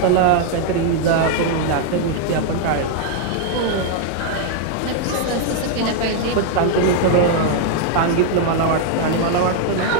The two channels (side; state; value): both; different; correlation 0.00